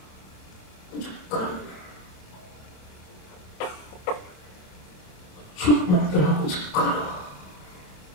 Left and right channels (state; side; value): late; right; 27 ms